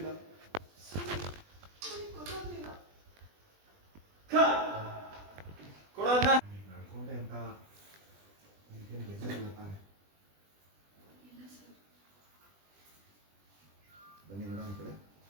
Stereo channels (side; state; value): left; late; 20 ms